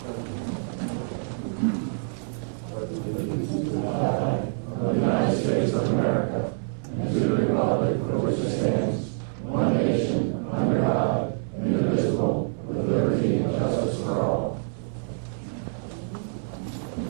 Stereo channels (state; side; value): silent; left; 61 dB below the other